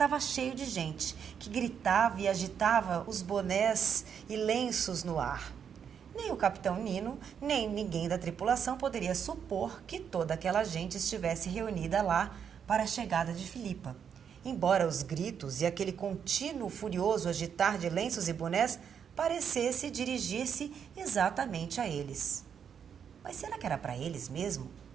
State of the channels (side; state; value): left; quieter; 7.6 dB